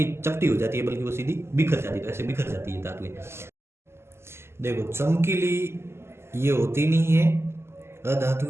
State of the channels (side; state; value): left; late; 0.12 ms